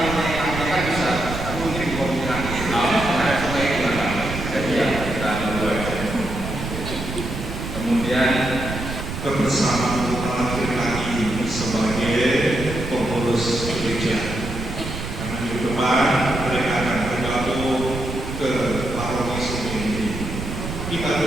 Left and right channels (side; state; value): right; noise; rumble, 6 dB below the sound